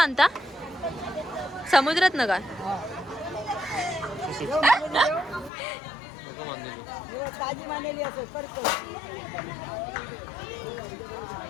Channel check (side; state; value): right; drops out; at 5.5 s